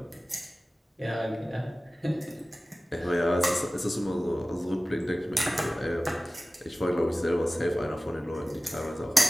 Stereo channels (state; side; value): normal; both; correlation 0.96